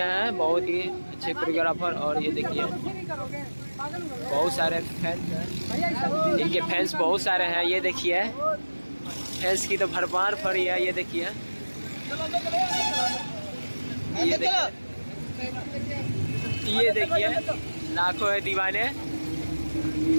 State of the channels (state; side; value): inverted; both; correlation -1.00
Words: हैं, बहुत ही अच्छे कोरियोग्राफर। और ये देखिए बहुत सारे फैंस हैं, इनके फैंस बहुत सारे हैं। ये देखिए फैंस की तो भरमार पड़ी है। ये देखिए ये देखिए लाखों है दीवाने